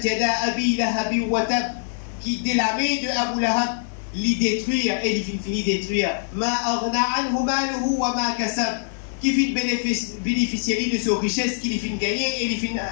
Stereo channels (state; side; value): silent; right; digital silence